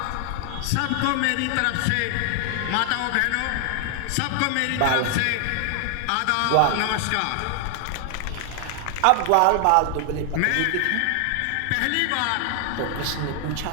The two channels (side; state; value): both; different; correlation 0.00